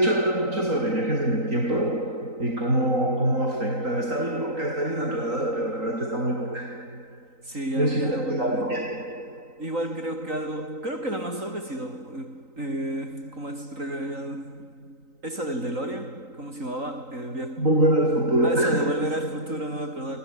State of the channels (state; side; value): late; left; 3.9 ms